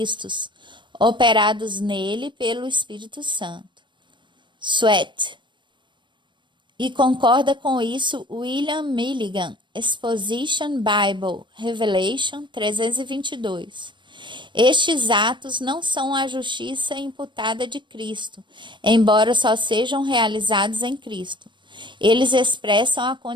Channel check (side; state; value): left; late; 0.23 ms